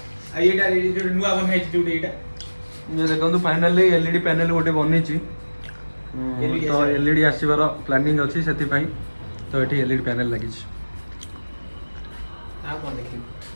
ଏଇଟା ନୂଆ ବନା ହେଇଛି ଯୋଉଟା ଏଇଟା। ଇଏ ଦେଖନ୍ତୁ ଫାଇନାଲି ଏଲଇଡି ପ୍ୟାନେଲ ଗୋଟେ ବନେଇଛି। ତ ଏଲଇଡି ଆସିବାର ପ୍ଲାନିଂ ଅଛି, ସେଥିପାଇଁ ତ ଏଠି ଏଲଇଡି ପ୍ୟାନେଲ ଲାଗିଛି। ଆଉ କଣ ଦେଖିବୁ?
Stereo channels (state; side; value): inverted; both; correlation -1.00